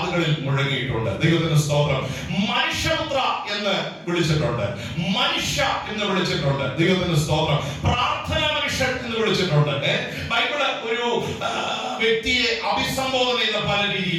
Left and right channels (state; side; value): identical; both; correlation 1.00